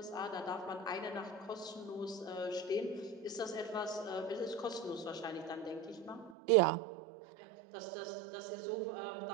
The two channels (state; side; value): drops out; left; at 6.4 s